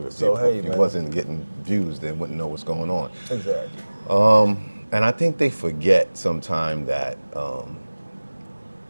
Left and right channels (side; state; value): both; inverted; correlation -1.00